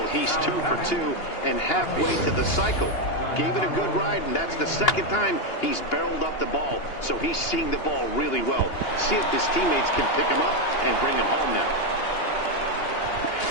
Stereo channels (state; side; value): late; right; 2.8 ms